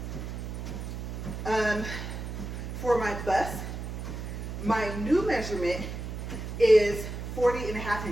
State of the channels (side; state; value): right; noise; hum, 6 dB below the sound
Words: For my bust, my new measurement is 40.5